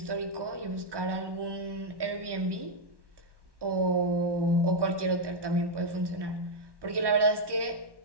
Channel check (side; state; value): left; late; 1.1 ms